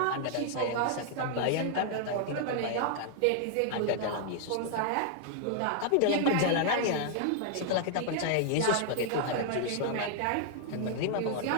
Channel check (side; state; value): both; different; correlation 0.00